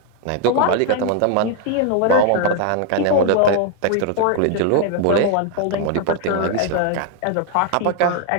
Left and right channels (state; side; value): different; both; correlation 0.01